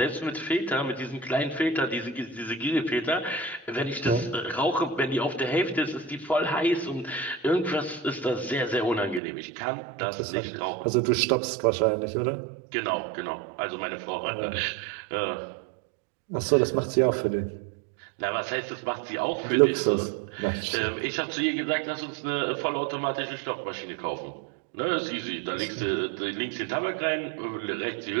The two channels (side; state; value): left; drops out; at 9.2 s